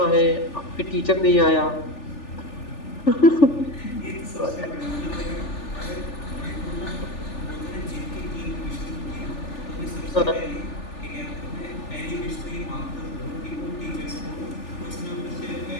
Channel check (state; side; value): late; right; 3.4 ms